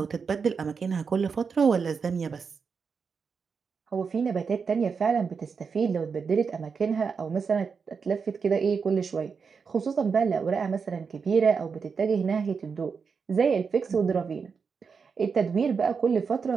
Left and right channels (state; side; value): quieter; left; 5.6 dB